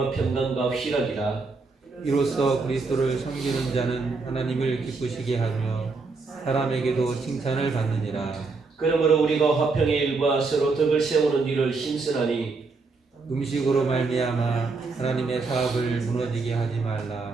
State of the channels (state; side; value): quieter; left; 4.1 dB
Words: 평강과 희락이라. 이로써 그리스도를 섬기는 자는 하나님을 기쁘시게 하며 사람에게도 칭찬을 받느니라. 그러므로 우리가 화평의 일과 서로 덕을 세우는 일을 힘쓰나니 음식으로 말미암아 하나님의 사업을 무너지게 하지